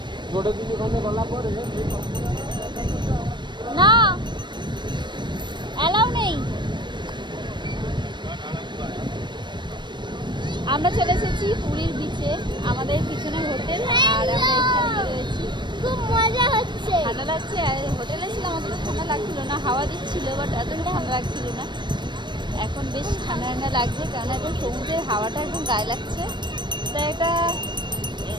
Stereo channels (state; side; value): late; left; 0.22 ms